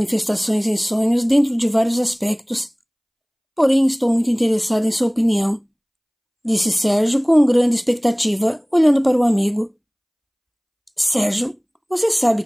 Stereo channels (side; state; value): both; identical; correlation 1.00